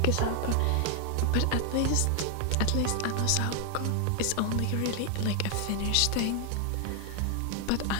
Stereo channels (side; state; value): both; different; correlation 0.00